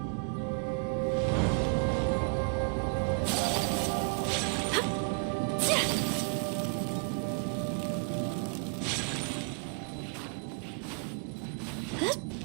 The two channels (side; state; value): left; quieter; 38.1 dB